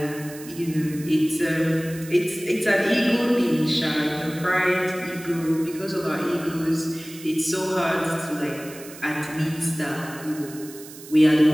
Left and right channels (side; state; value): right; noise; hiss, 17 dB below the sound